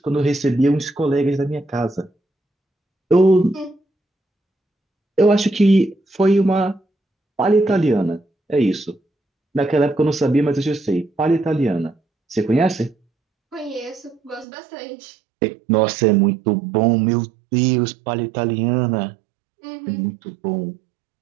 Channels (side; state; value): left; drops out; at 14.5 s